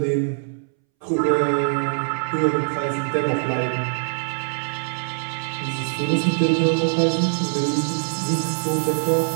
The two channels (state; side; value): silent; left; 64 dB below the other